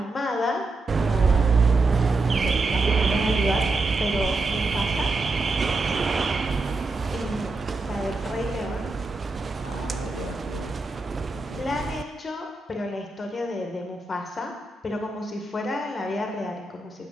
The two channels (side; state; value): left; quieter; 3.2 dB